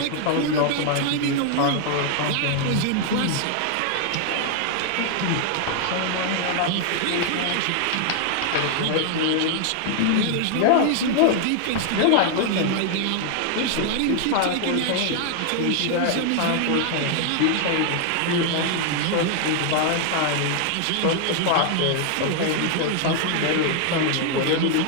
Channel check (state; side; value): different; both; correlation 0.00